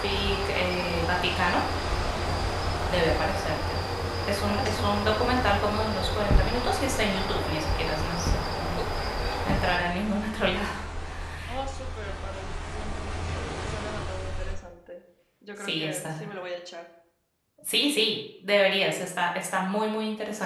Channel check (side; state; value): both; identical; correlation 1.00